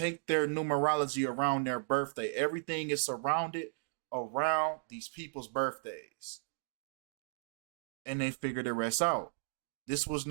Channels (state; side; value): silent; left; digital silence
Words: their numerology around their birthday. Everything is surrounded around these people's birthdays. And they figure the rest out. This was